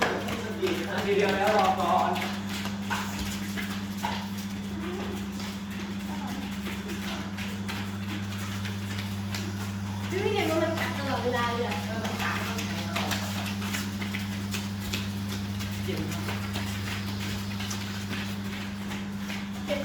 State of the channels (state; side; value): identical; both; correlation 1.00